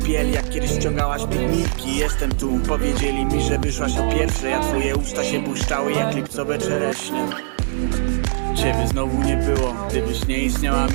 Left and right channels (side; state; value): left; silent; digital silence